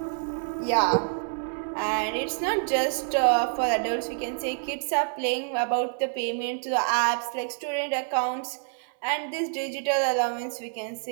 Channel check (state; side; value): silent; left; 59 dB below the other